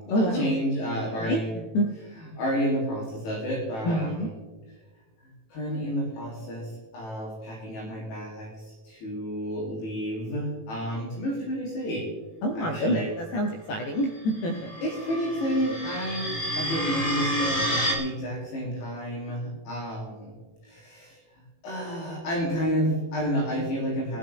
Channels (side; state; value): right; late; 18 ms